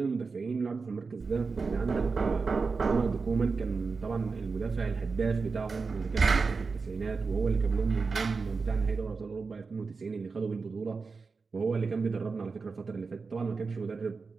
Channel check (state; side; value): quieter; left; 4.6 dB